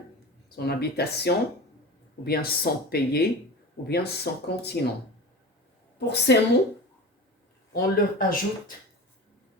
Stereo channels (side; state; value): both; normal; correlation 0.31